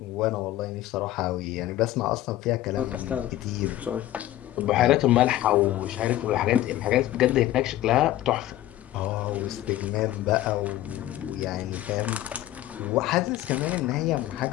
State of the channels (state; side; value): quieter; right; 14.2 dB